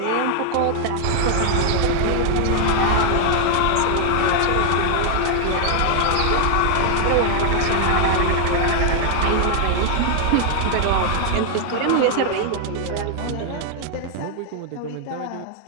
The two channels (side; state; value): both; different; correlation 0.00